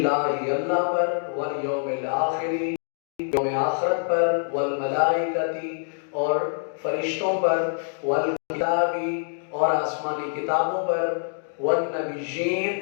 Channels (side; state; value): right; silent; digital silence